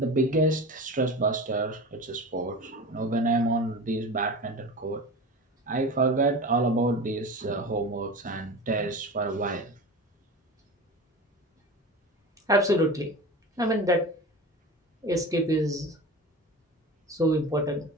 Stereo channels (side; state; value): both; normal; correlation 0.31